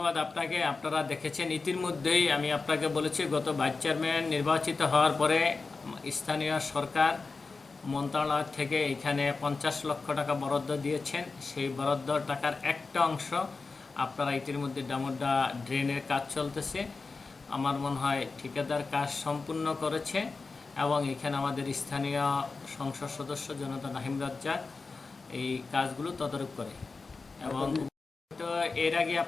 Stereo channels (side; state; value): right; quieter; 4.1 dB